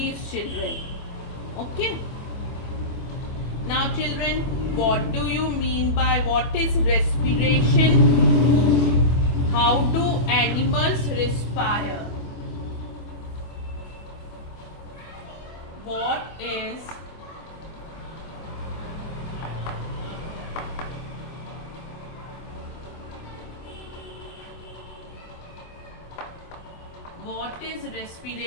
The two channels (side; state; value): right; late; 25 ms